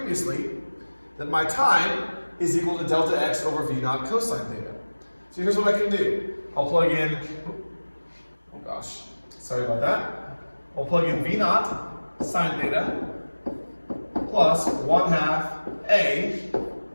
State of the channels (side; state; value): both; inverted; correlation -1.00